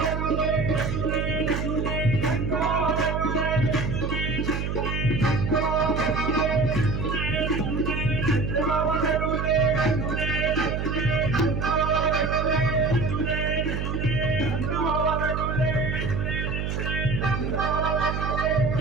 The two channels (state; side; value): noise; right; hum, 2 dB below the sound